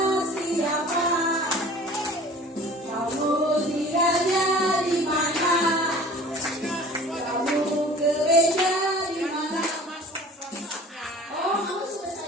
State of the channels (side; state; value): both; normal; correlation 0.44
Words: siapa? Kamu tinggalnya di mana? Kamu gereja di mana? Oh, kamu sudah